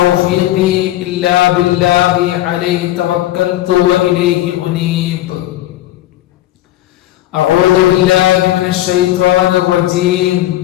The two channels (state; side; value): quieter; right; 14.8 dB